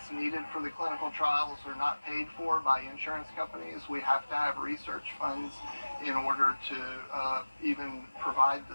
needed for the clinical trials are not paid for by insurance companies. We have to have research funds in order to even provide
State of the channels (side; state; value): both; inverted; correlation -1.00